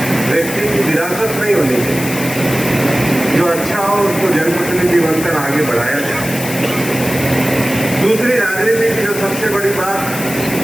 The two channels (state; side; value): noise; left; hiss, 9 dB below the sound